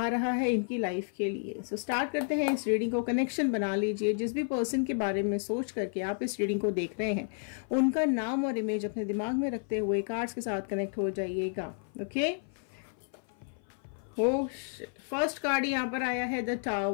रहा है इनकी लाइफ के लिए। सो स्टार्ट करते हैं इस रीडिंग को। कनेक्शन बना लीजिए। जिस भी पर्सन के बारे में सोच करके आप इस रीडिंग को देख रहे हैं, उनका नाम और इमेज अपने दिमाग में रखते हुए कार्ड्स के साथ कनेक्ट हो जाइएगा। ओके, फर्स्ट कार्ड यहाँ पर आया है द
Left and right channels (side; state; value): right; silent; 55 dB below the other